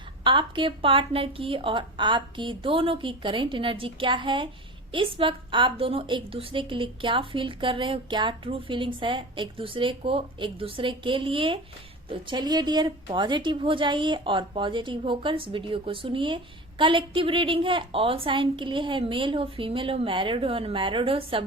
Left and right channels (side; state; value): both; normal; correlation 0.31